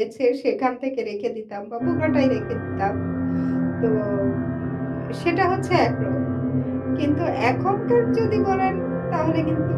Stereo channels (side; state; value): both; identical; correlation 1.00